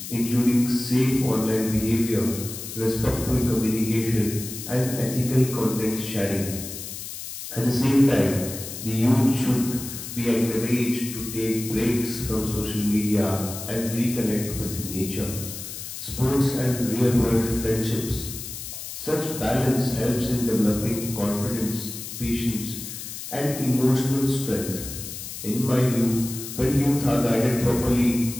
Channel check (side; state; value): left; noise; hiss, 9 dB below the sound